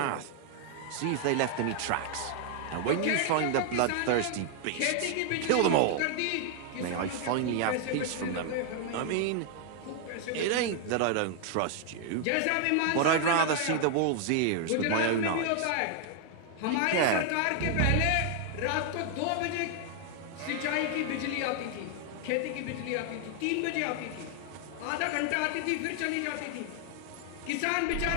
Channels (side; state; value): both; different; correlation 0.00